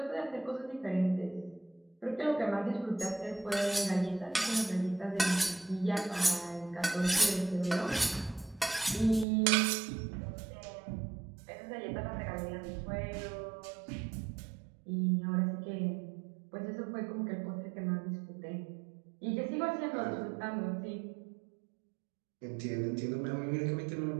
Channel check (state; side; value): drops out; left; at 9.2 s